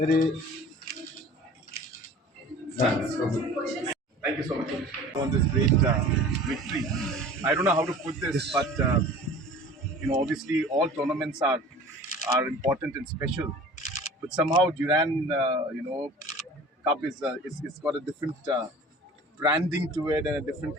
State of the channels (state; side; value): normal; both; correlation 0.43